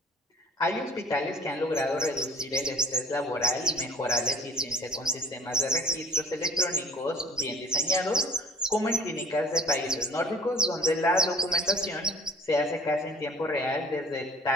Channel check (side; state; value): both; normal; correlation 0.49